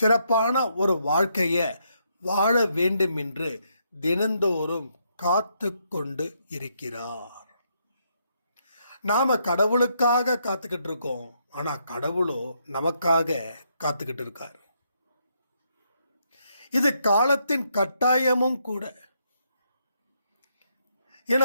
சிறப்பான ஒரு வாழ்க்கைய வாழ வேண்டும் என்று தினந்தோறும் காத்து கொண்டு இருக்கிறார். நாம கடவுளுக்காக காத்துக்கிட்டு இருக்கோம், ஆனா கடவுளோ நமக்காக காத்துக்கிட்டு இருக்கார். இது காலத்தின் கட்டாயமும் கூட.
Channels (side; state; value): both; inverted; correlation -0.76